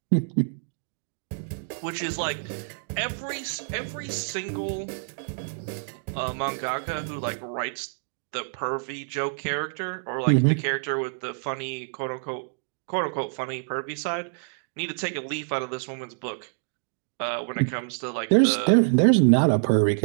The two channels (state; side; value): silent; left; digital silence